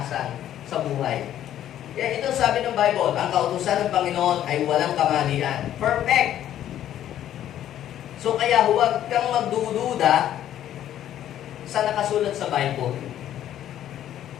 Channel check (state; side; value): quieter; right; 11.5 dB